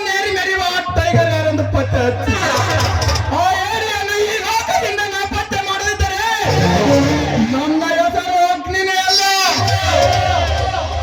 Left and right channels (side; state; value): both; identical; correlation 1.00